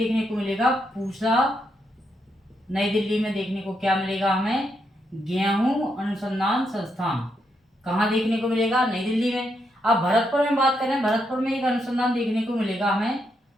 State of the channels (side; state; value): both; normal; correlation 0.80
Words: को मिलेगा। पूसा, नई दिल्ली में देखने को क्या मिलेगा हमें, गेहूं अनुसंधान संस्थान। कहाँ देखने को मिलेगा, नई दिल्ली में। अब भरतपुर में बात करें, भरतपुर में एक अनुसंधान देखने को मिलेगा हमें,